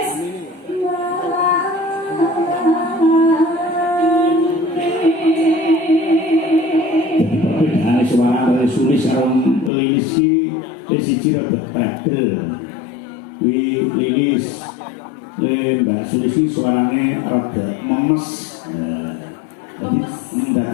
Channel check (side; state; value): right; drops out; at 9.7 s